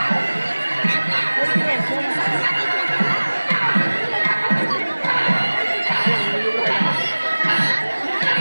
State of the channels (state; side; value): inverted; both; correlation -1.00